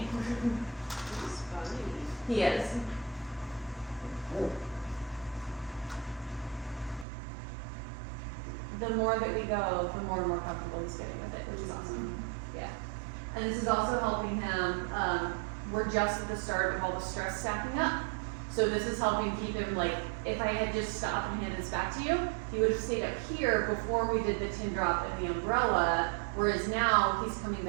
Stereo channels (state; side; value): drops out; left; at 7.1 s